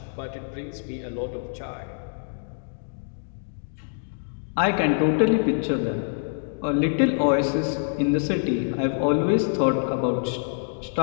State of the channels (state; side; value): silent; right; digital silence